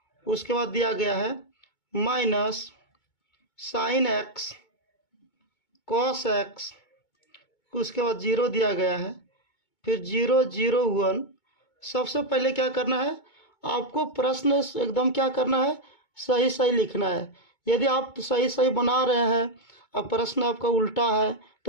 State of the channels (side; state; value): right; late; 2.2 ms